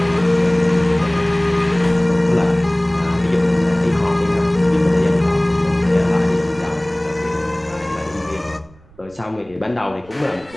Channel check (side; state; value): right; noise; rumble, 26 dB below the sound